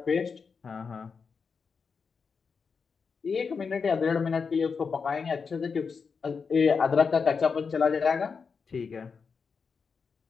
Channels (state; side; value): quieter; right; 5.5 dB